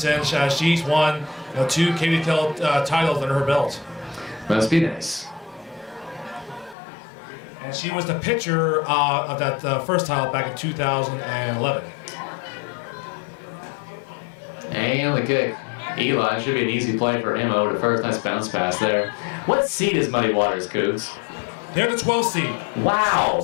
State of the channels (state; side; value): drops out; right; at 6.8 s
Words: She's won 2 KVKL titles under her belt. Must be nice. And she was the pitcher of that first title back in 2011. And the kick. Eli should be an easy play for him over to first. Nice bounce pass there. What seed is Muddy Waters, Cougs? They're the 12th seed.